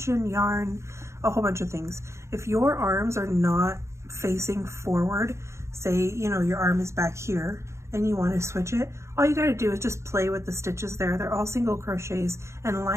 yarn, a whole bunch of things. If your arms are not facing forward, say, you know, your arm is back here and you want to switch it, all you got to do is just play with the stitches there. They're all single crochets, and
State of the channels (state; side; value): late; left; 0.14 ms